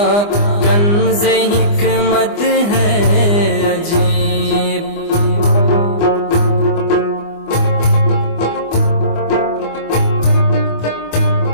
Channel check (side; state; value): right; late; 24 ms